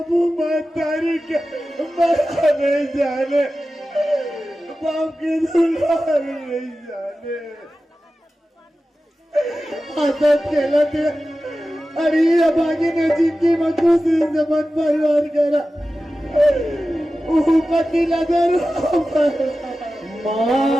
माँ तारी के मरा नहीं जाने बाप की दुलार नहीं जाने आदत खेला थे। अरे अब आगे नजीब की मजबूत जमान परिवार करा पति नजर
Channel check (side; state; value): both; normal; correlation 0.94